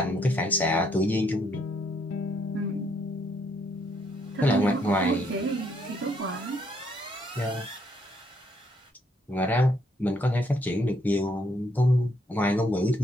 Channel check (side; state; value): both; normal; correlation 0.71